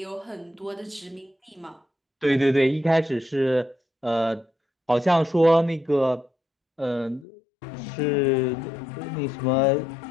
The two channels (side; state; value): right; drops out; at 7.2 s